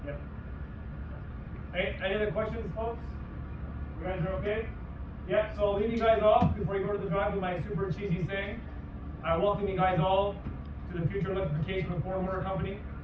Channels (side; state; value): both; identical; correlation 1.00